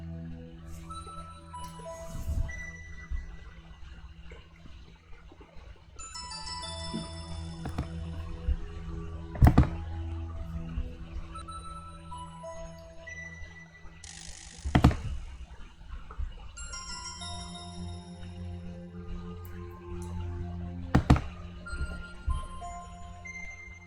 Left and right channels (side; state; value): both; identical; correlation 1.00